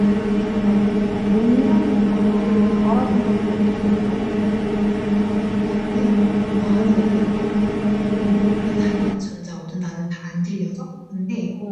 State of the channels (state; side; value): identical; both; correlation 1.00